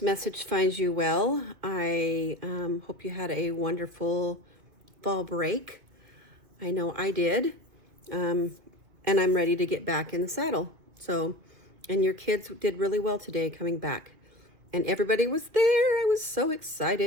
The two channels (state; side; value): late; left; 2.4 ms